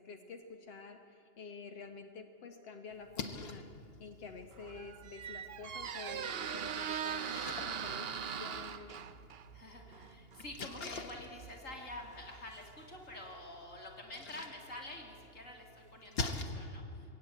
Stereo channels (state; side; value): late; right; 2.8 ms